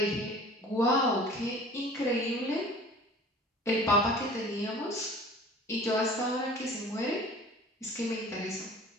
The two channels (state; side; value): normal; both; correlation 0.45